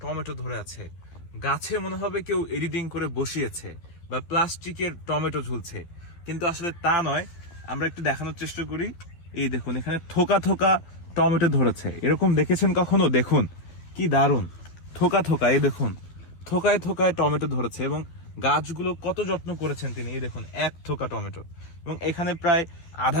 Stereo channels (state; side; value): late; right; 12 ms